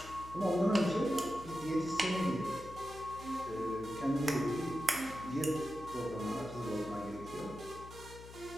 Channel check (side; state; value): left; noise; hum, 15 dB below the sound